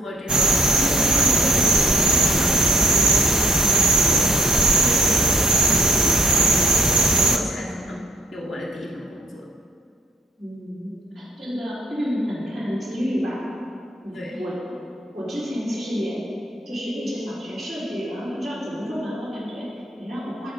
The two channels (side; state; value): both; normal; correlation 0.60